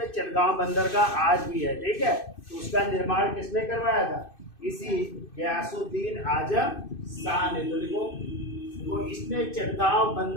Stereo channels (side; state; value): right; late; 2.6 ms